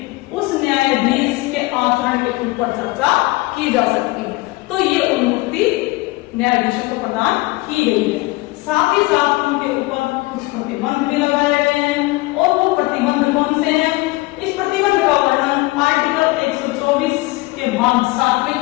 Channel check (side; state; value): right; quieter; 22.0 dB